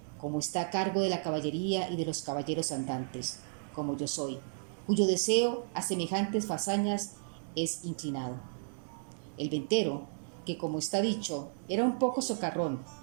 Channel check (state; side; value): silent; left; 55 dB below the other